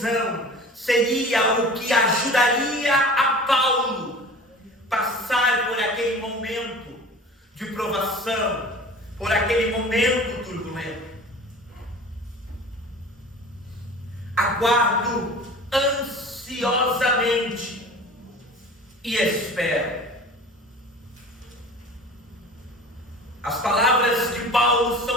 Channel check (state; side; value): normal; both; correlation 0.40